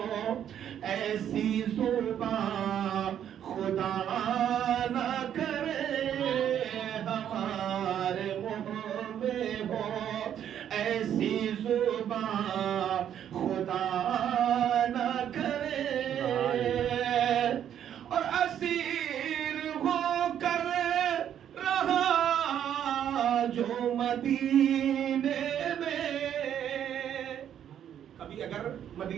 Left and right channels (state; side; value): quieter; left; 9.8 dB